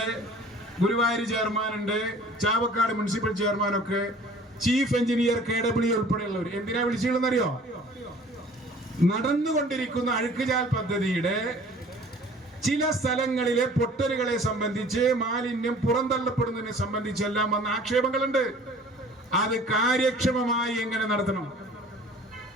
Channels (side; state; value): both; normal; correlation 0.49